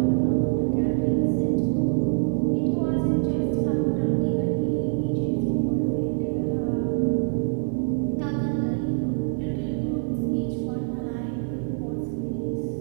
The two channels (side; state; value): left; silent; 60 dB below the other